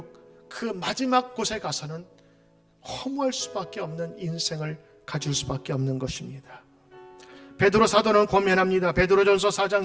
그 마지막 곳에 가서는 허무할 수밖에 없는 인생을 가질 수밖에 없는 것입니다. 베드로 사도는 고면합니다. 베드로전서 4장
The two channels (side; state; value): both; identical; correlation 1.00